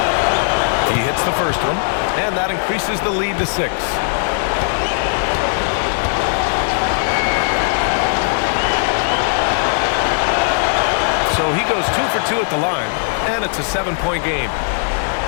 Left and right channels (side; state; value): right; silent; digital silence